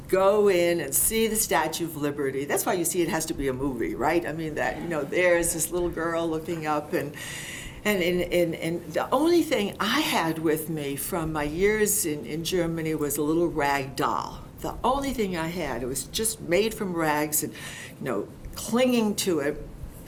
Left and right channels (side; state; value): both; identical; correlation 1.00